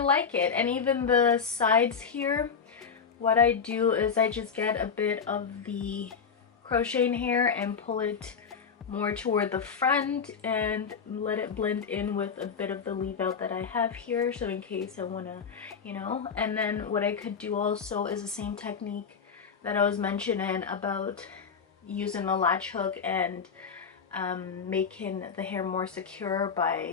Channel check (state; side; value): quieter; right; 6.2 dB